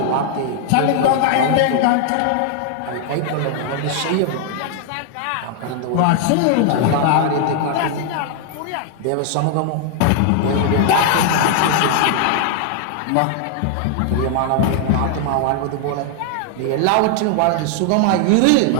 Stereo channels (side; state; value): both; different; correlation 0.00